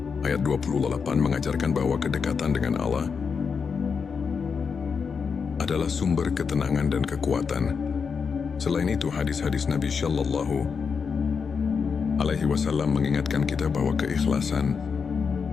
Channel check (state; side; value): quieter; right; 5.8 dB